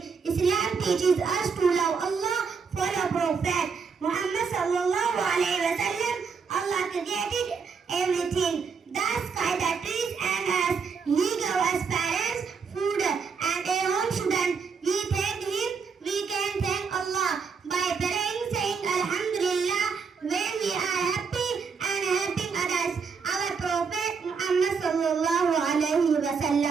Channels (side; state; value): left; quieter; 5.6 dB